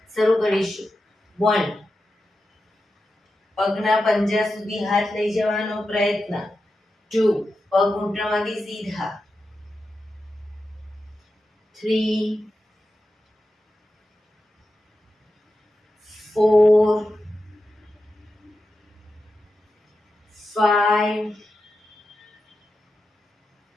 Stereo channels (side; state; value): both; normal; correlation 0.90